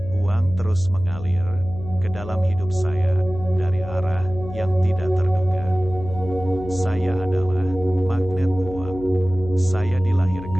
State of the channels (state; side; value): noise; left; hum, 12 dB below the sound